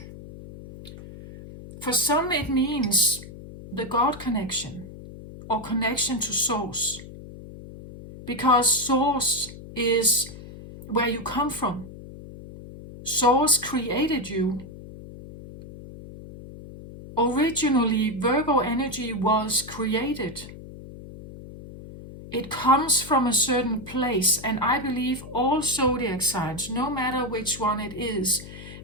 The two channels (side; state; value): left; noise; hum, 15 dB below the sound